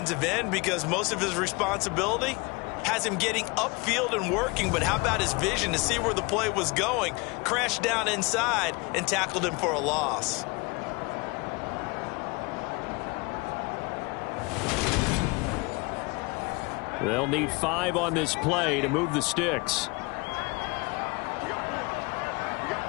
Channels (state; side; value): quieter; right; 27.5 dB